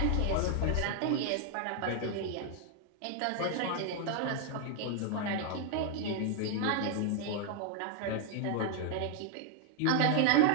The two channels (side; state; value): both; different; correlation 0.00